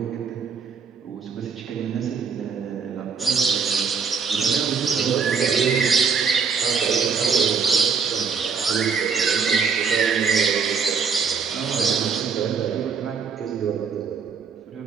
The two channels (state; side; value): quieter; left; 5.9 dB